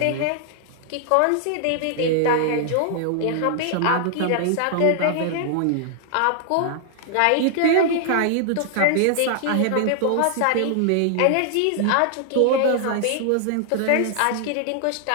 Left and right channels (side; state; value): both; different; correlation 0.00